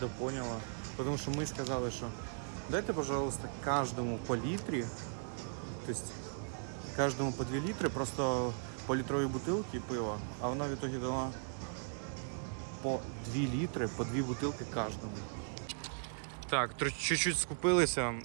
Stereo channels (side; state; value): left; silent; digital silence